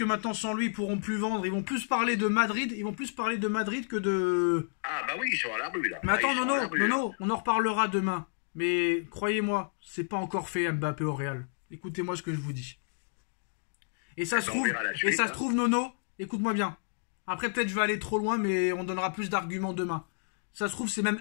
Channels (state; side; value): silent; right; digital silence